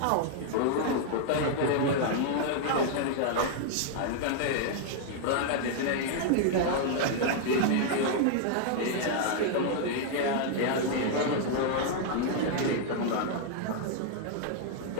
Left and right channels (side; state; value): both; different; correlation -0.01